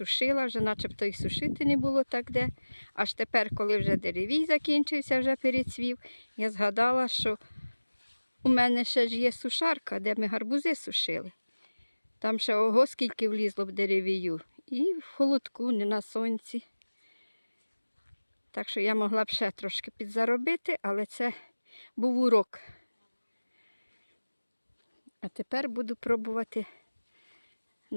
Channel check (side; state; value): both; inverted; correlation -1.00